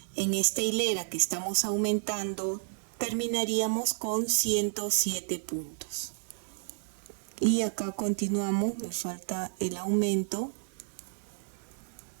en esta hilera que estamos aumentando terminaríamos con 107 puntos. Y acá continuamos, me falta el aumento.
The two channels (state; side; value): silent; left; digital silence